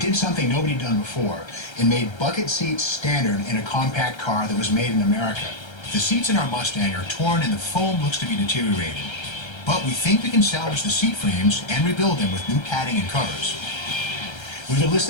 did something nobody had done before. It made bucket seats standard in a compact car that was made in America. The seats in our Mustang are torn and the foam looks to be deteriorated. But we think we can salvage the seat frames and rebuild them with new padding and covers. We've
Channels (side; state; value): right; late; 1.3 ms